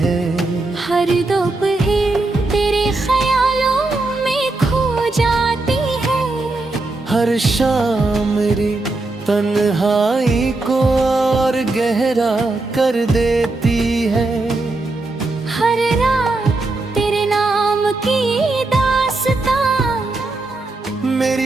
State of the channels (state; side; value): quieter; left; 3.1 dB